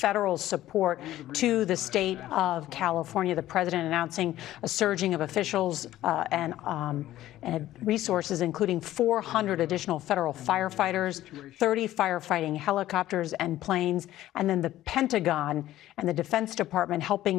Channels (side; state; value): right; quieter; 14.2 dB